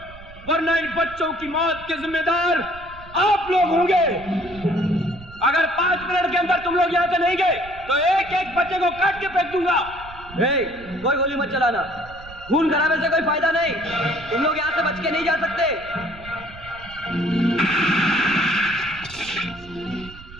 वरना इन बच्चों की मौत के जिम्मेदार आप लोग होंगे। अगर 5 मिनट के अंदर तुम लोग यहाँ से नहीं गए तो एक एक बच्चे को काट के फेंक दूंगा। कोई गोली मत चलाना, खून कराने से कोई फायदा नहीं। तुम लोग यहाँ से बच के नहीं जा सकते।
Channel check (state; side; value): noise; right; rumble, 18 dB below the sound